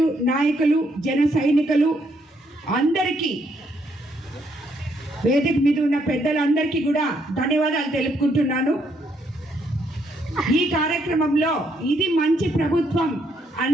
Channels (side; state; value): both; normal; correlation 0.73